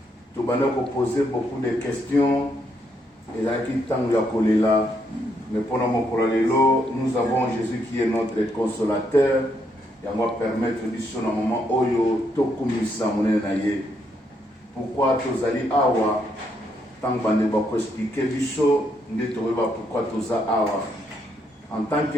tobanda ko poser beaucoup de questions. Et là qui tango ya kolela, mais pendant mon lelo, nous avons Jésus qui est notre consolateur. Et on va permettre biso na moment oyo tokumisa monene na ye. Pourquoi tozali awa? Tant bande ba ko expliquer biso nde toyeba pourquoi toza awa. En tant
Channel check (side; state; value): both; normal; correlation 0.76